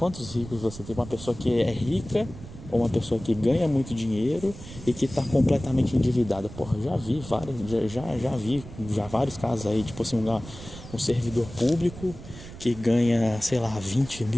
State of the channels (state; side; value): noise; right; rumble, 14 dB below the sound